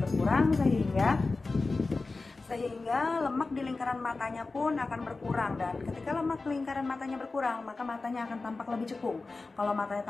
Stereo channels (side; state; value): right; quieter; 3.7 dB